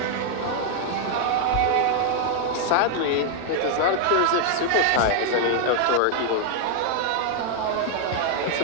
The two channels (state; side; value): different; both; correlation 0.00